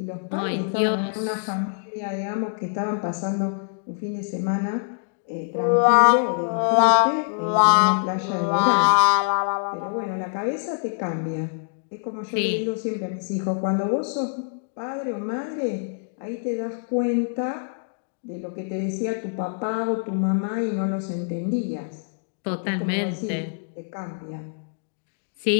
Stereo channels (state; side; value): silent; right; digital silence